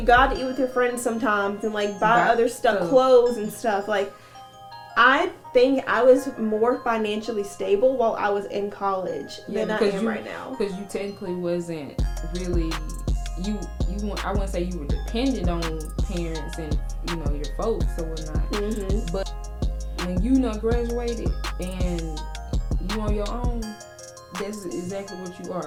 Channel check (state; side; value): identical; both; correlation 1.00